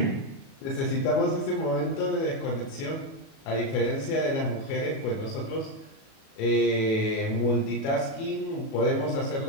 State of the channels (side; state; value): right; late; 37 ms